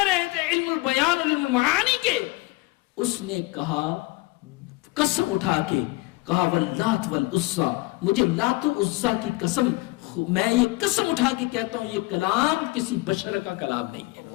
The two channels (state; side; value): quieter; right; 22.4 dB